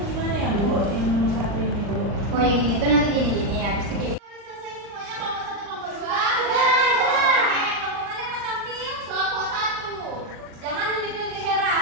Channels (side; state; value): left; late; 39 ms